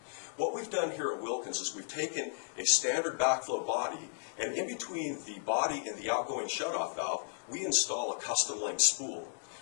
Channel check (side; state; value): right; silent; digital silence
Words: What we've done here at Wilkins is we've taken a standard backflow body, and in between the body and the outgoing shutoff valve, we install a custom length spool.